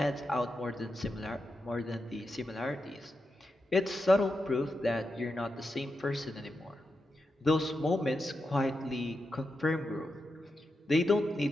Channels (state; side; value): normal; both; correlation 0.87